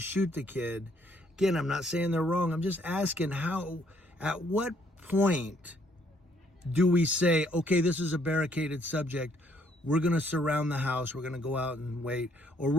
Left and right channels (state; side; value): normal; both; correlation 0.67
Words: the kid. Again, I'm not saying they're wrong. I'm just asking at what point do we say, okay, this is a barricaded subject. We're going to surround the house. We're going to go out and wait. Or